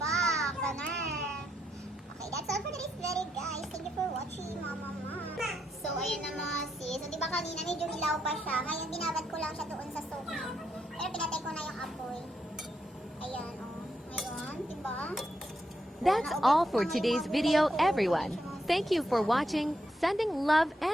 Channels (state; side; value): normal; both; correlation 0.80